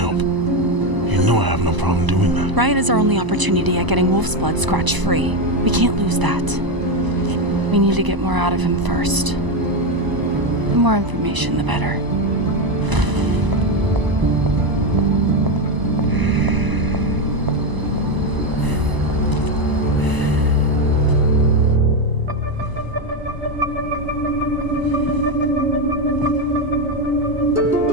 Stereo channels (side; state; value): left; late; 1.0 ms